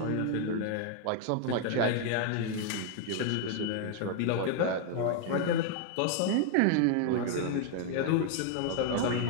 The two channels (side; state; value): both; different; correlation 0.00